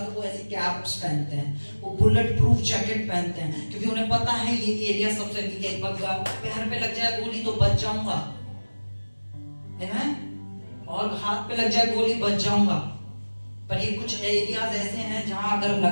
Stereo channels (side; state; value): both; inverted; correlation -1.00